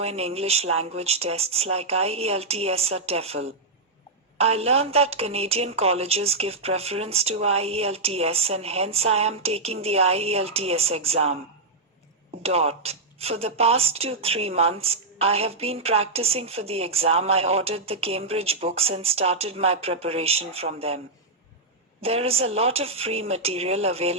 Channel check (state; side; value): quieter; left; 3.2 dB